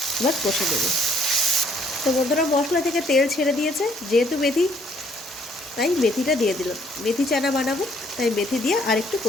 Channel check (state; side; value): normal; both; correlation 0.64